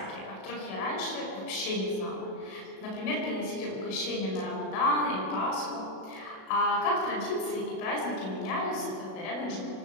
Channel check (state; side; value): late; right; 37 ms